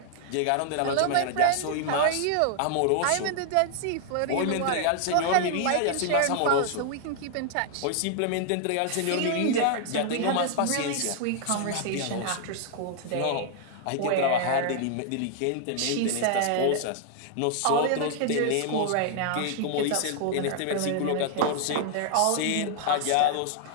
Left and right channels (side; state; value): both; different; correlation 0.00